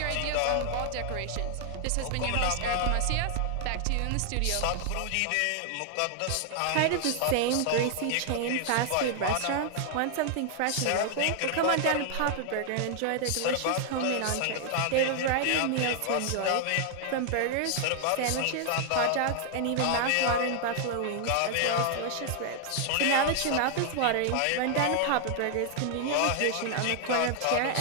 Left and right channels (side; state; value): both; different; correlation 0.00